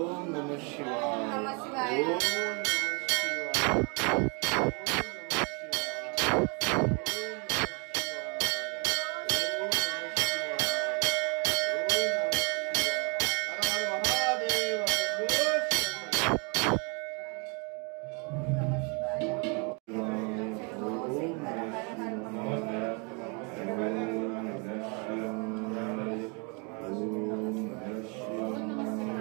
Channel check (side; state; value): left; quieter; 33.7 dB